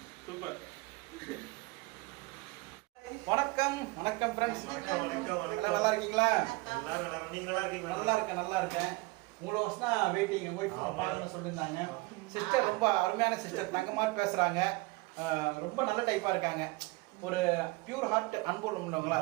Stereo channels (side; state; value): left; quieter; 23.5 dB